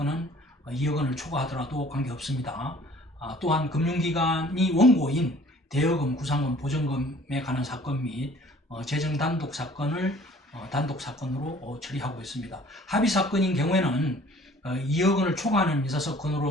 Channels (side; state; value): both; normal; correlation 0.52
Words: 2억 원을 초과하더라도 관계없습니다. 또한 금융기관이 원고인 대여금, 구상금, 보전금에 관한 사건 및 재정 단독 사건을 단독 사건으로 처리하고 있습니다. 합의 사건인 경우에는 2억 원을 초과하는